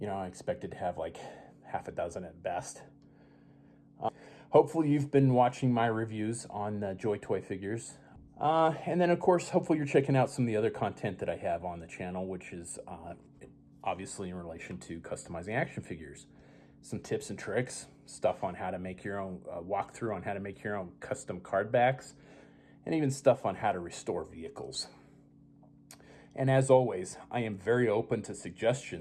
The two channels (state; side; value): identical; both; correlation 1.00